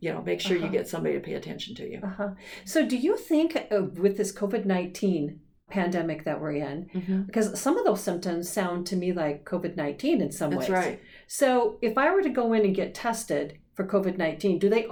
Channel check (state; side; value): identical; both; correlation 1.00